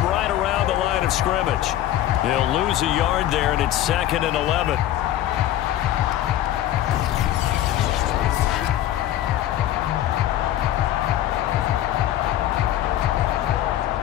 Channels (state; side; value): quieter; right; 12.7 dB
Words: right around the line of scrimmage. He'll lose a yard there, and it's 2nd and 11.